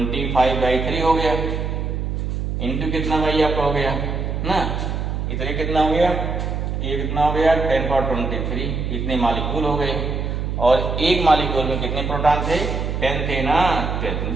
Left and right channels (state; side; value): noise; right; hum, 2 dB below the sound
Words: हो गया, इंटू कितना भाई आपका हो गया ना, इतने कितना हो गया, ये कितना हो गया 10 पावर 23, इतने मॉलिक्यूल हो गए। और एक मॉलिक्यूल में कितने प्रोटॉन थे, 10 थे ना, 10